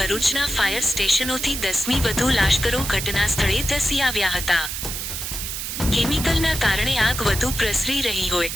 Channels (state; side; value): noise; right; hiss, 5 dB below the sound